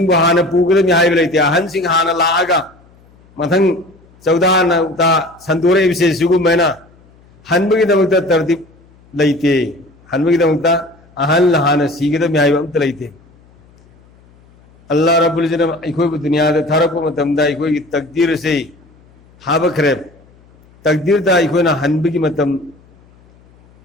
हाना पूगदम हाइब लेते अहन सिंह हाना लागा मथंग चौदान ता संतोरे विषय सुगुमैना हनबगी दमकता तरतीब लेते हनबगी दमकता अहन हाना सीगदम हाइब अमत लेते अल्लाह रब्बुल इज़्ज़त इखोय दुनिया दा थरप मतमदा इखोय की तकदीर से हाबखरे तकदीर दा इखोय ना हनबगी मतम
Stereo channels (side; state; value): left; noise; hum, 29 dB below the sound